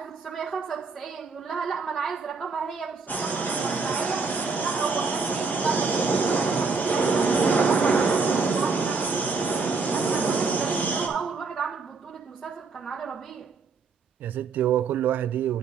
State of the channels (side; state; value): left; quieter; 4.6 dB